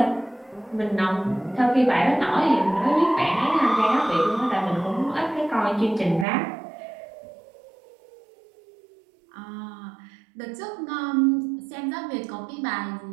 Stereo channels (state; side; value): drops out; left; at 6.2 s